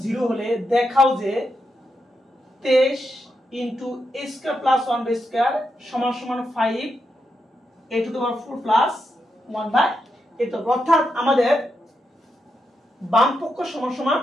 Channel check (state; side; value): normal; both; correlation 0.84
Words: 0 হলে দেখাও যে 23 into a square plus 1 by square সমান সমান 5 a to the power 4 plus 1 by a তো অর্থাৎ আমাদের বাম পক্ষ সমান সমান